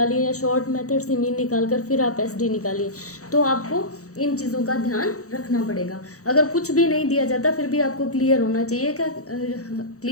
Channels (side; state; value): right; late; 0.65 ms